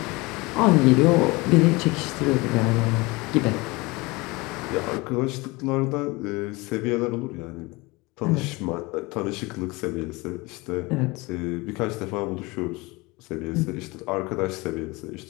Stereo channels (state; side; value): quieter; right; 23.9 dB